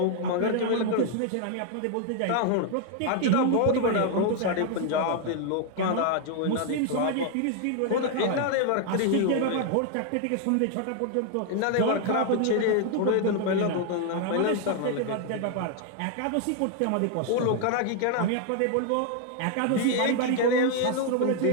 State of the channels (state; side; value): different; both; correlation 0.00